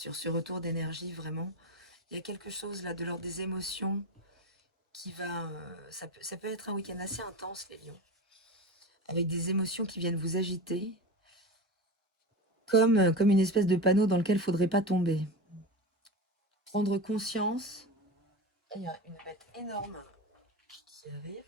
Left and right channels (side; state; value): both; normal; correlation 0.26